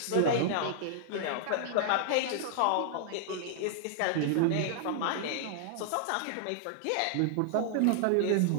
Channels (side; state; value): both; different; correlation -0.01